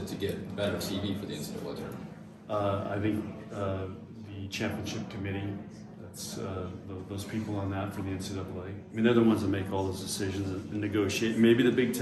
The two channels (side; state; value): both; identical; correlation 1.00